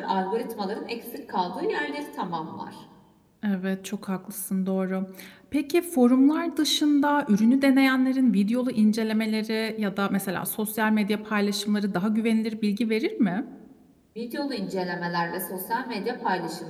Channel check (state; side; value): identical; both; correlation 1.00